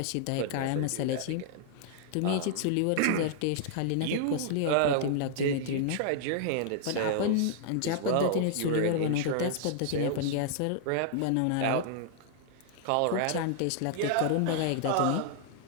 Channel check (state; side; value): different; both; correlation -0.01